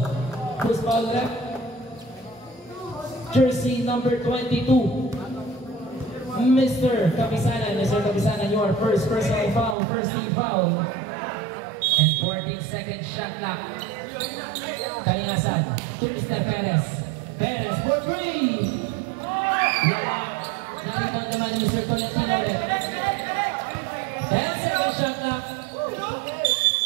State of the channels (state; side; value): drops out; left; at 9.8 s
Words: Who's foul left? Jersey number 22. Mr. Kapisanan. Mr. Kapisanan, your first personal foul. First team foul. And 14-second shot clock. Kalinasan. To Mr. Perez. Perez for 3. Nakikita naman Mr. Tolentino ulit. 10-second shot clock.